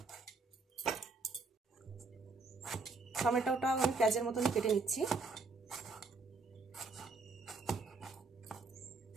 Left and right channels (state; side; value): quieter; left; 3.8 dB